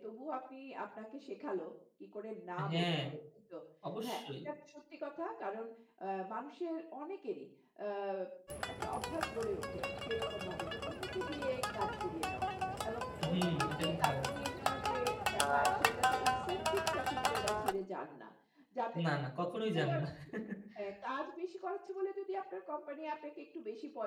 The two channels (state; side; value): identical; both; correlation 1.00